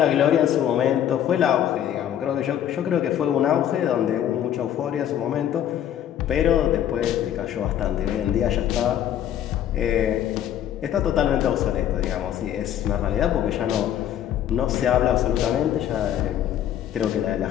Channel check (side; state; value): right; quieter; 10.6 dB